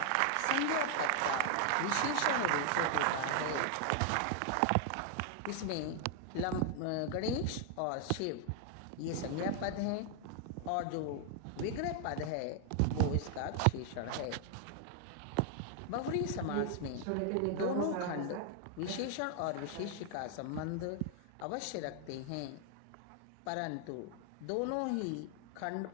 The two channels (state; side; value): different; both; correlation 0.00